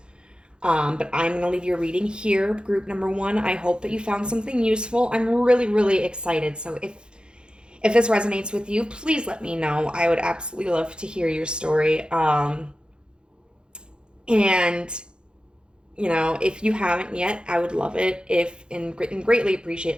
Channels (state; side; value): late; left; 0.050 ms